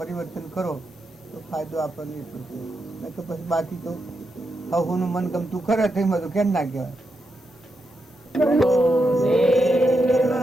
કરો તો ફાયદો આપણને એટલો છે. નહીં તો પછી બાકી તો હવનું મન ગમતું કરે તો એમાં તો કેમ ના કહેવાય.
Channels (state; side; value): normal; both; correlation 0.85